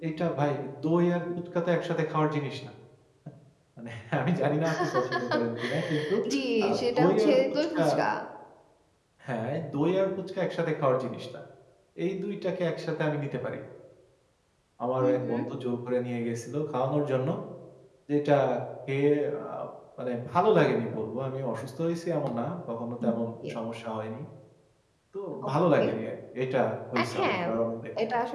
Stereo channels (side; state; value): both; identical; correlation 1.00